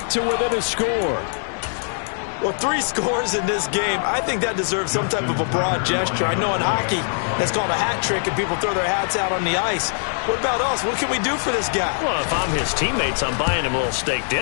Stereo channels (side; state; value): right; silent; digital silence